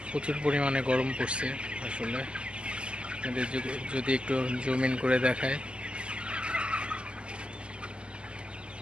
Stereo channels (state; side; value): late; left; 0.051 ms